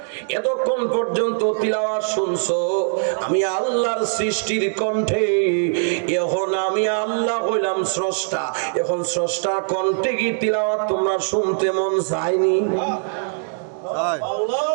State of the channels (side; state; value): left; silent; digital silence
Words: এতক্ষণ পর্যন্ত তিলাওয়াত শুনছো আমি আল্লাহর সৃষ্টির কণ্ঠে, এখন আমি আল্লাহ হইলাম স্রষ্টা, এখন স্রষ্টার কণ্ঠে কি তিলাওয়াত তোমরা শুনতে মন চায়নি?